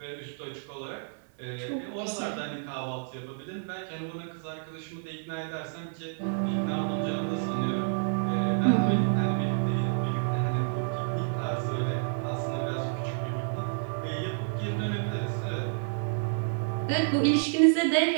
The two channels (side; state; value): left; silent; digital silence